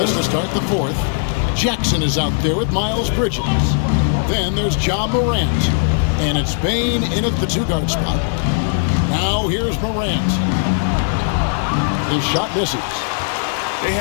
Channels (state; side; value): silent; right; digital silence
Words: to start the 4th. Jackson is out there with Miles Bridges. Then there's Ja Morant. And it's Bain in at the 2-guard spot. Now here's Morant. His shot misses. They